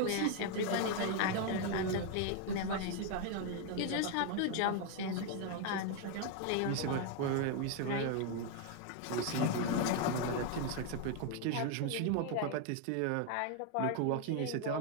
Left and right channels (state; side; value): different; both; correlation 0.01